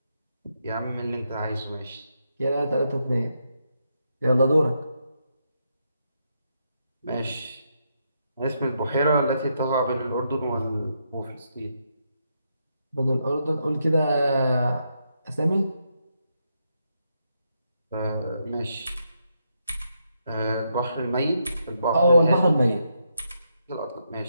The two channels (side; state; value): both; inverted; correlation -0.80